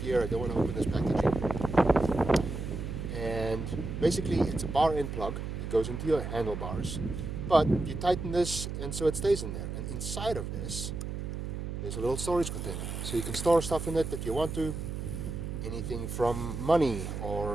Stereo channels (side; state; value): right; noise; hum, 5 dB below the sound